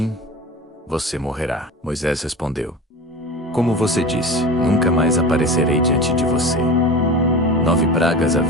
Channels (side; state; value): both; normal; correlation 0.32